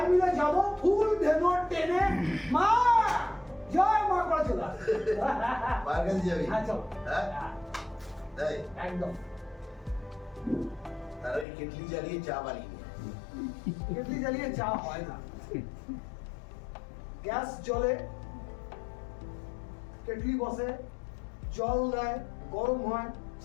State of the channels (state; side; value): drops out; right; at 11.5 s